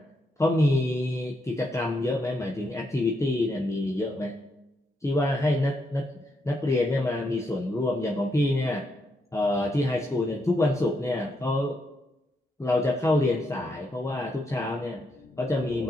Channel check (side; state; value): both; normal; correlation 0.79